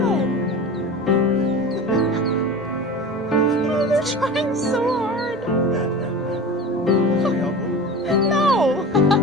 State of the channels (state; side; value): normal; both; correlation 0.33